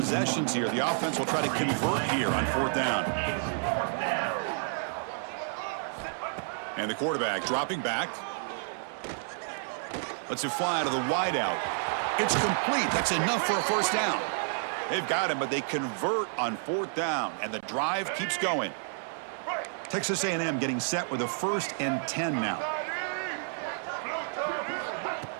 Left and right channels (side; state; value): left; silent; 58 dB below the other